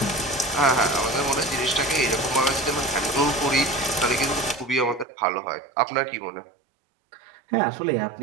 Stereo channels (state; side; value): drops out; left; at 5.1 s